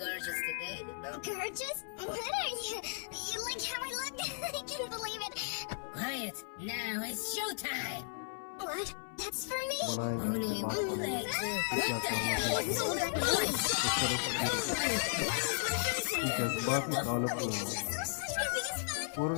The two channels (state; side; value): silent; right; 54 dB below the other